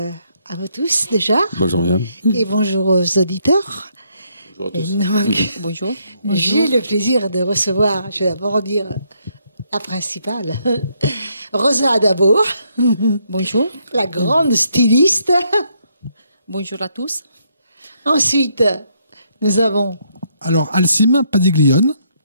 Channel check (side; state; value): both; inverted; correlation -0.73